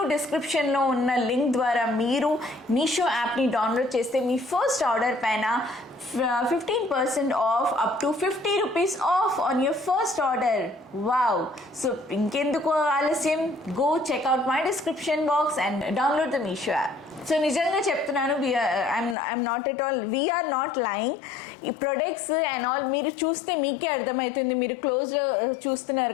డిస్క్రిప్షన్లో ఉన్న లింక్ ద్వారా మీరు మీషో యాప్ని డౌన్లోడ్ చేస్తే మీ ఫస్ట్ ఆర్డర్ పైన 15% off, up to 50 rupees off on your first order. Wow. So ఇంకెందుకు ఆలస్యం, go check out my description box and download the Meesho app. So నిజంగా చెప్తున్నాను, I'm not at all, we're not lying. ఈ products and all మీరు చూస్తే మీకే అర్థమవుతుంది, మీరు క్లోజ్లో చూస్తున్నారు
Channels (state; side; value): drops out; right; at 19.2 s